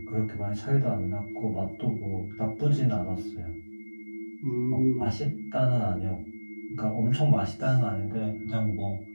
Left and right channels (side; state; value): both; inverted; correlation -1.00